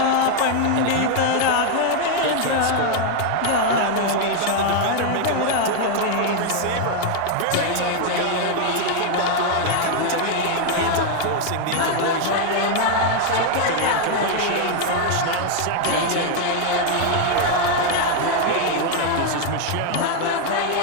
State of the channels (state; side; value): different; both; correlation 0.01